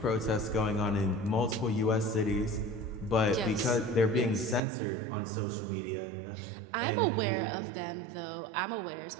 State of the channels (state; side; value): drops out; left; at 4.6 s